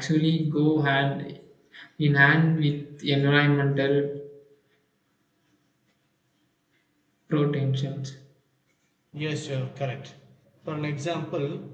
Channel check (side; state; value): both; identical; correlation 1.00